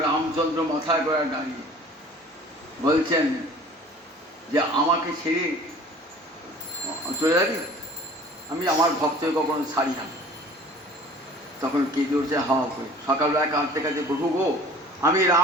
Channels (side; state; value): both; normal; correlation 0.47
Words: রামচন্দ্র মাথায় করে দাঁড়িয়ে বলছেন যে আমাকে ছেড়ে চলে যাবি, আমি আমার ভক্তকে কখনো ছাড়ি না। তখন কেঁদে উঠছে হাওয়া করে, সকালবেলা কাঁদতে কাঁদতে, প্রভু গো, আমি